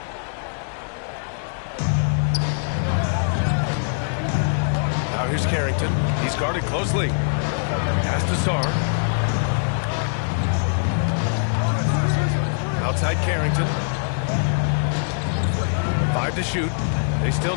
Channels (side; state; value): right; silent; digital silence